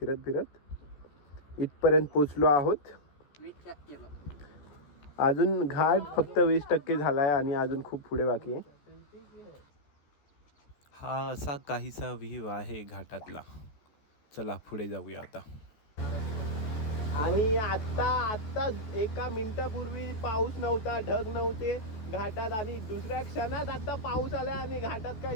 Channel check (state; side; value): late; right; 14 ms